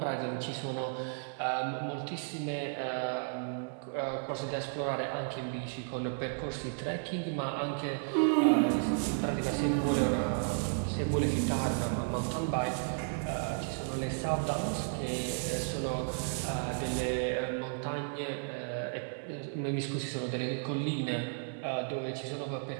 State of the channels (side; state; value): left; silent; digital silence